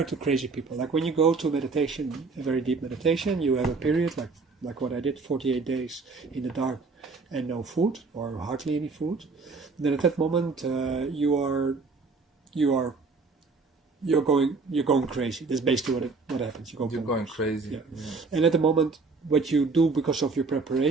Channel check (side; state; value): left; quieter; 4.2 dB